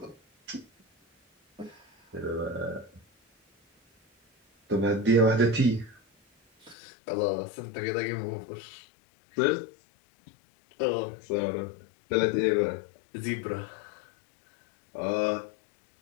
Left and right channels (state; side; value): drops out; right; at 6.8 s